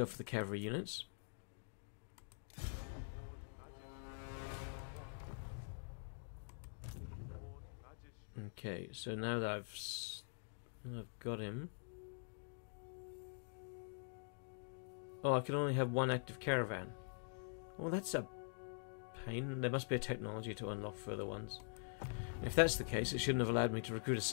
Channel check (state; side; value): silent; right; digital silence